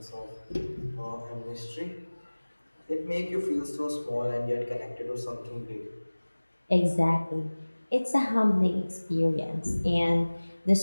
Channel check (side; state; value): both; inverted; correlation -1.00